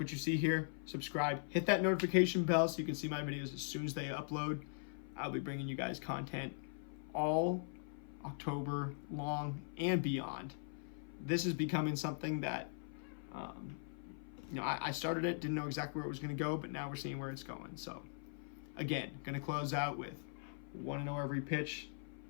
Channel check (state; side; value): silent; right; 51 dB below the other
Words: you see here, subscribe, hit that notification bell so you can see my videos as soon as they upload. I'll be bringing you guys content all October long and beyond. This is becoming something that, I started it, didn't know exactly where it was going to go, but now we're seeing where it's going. So, again, going to close out with 1-0 every pitch,